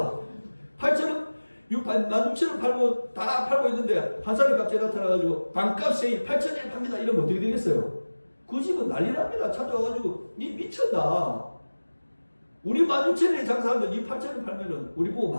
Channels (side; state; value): both; inverted; correlation -1.00